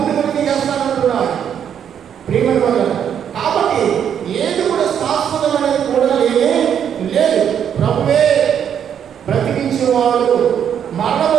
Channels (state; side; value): quieter; left; 8.7 dB